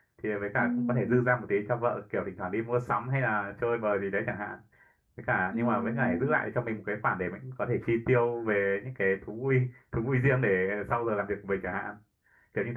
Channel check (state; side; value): identical; both; correlation 1.00